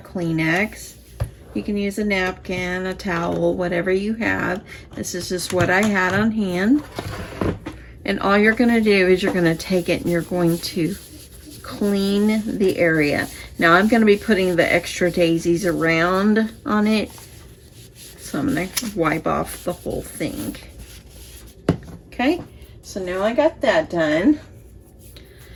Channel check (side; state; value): both; identical; correlation 1.00